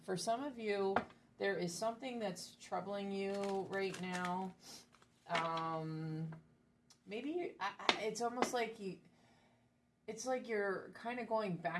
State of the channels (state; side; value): identical; both; correlation 1.00